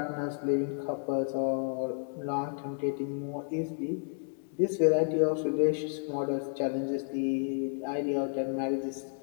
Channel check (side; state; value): right; silent; 57 dB below the other